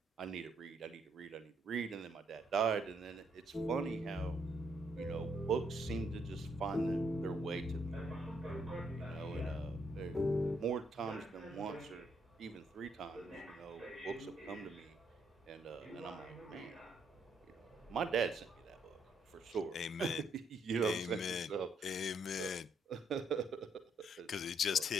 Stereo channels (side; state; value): both; normal; correlation 0.72